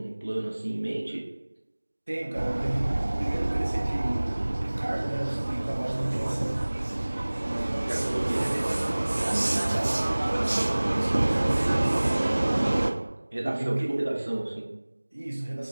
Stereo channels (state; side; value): inverted; both; correlation -1.00